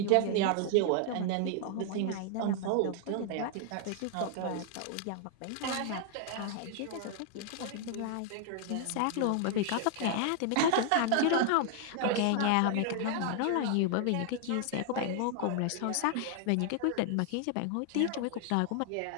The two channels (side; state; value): both; different; correlation 0.00